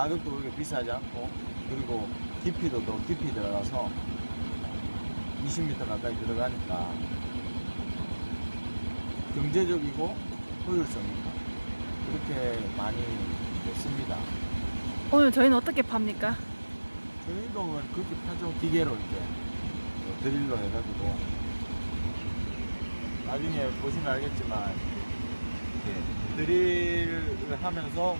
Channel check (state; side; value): inverted; both; correlation -1.00